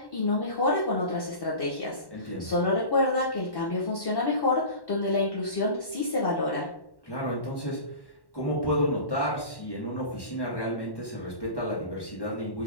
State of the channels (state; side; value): late; right; 1.1 ms